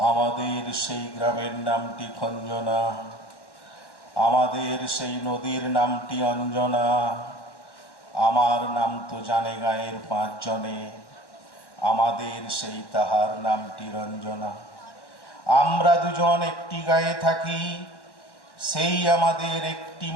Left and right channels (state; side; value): late; right; 1.1 ms